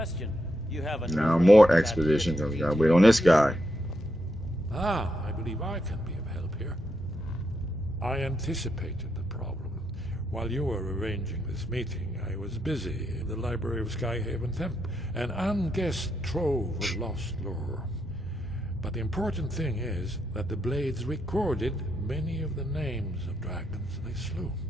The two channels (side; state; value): both; normal; correlation 0.82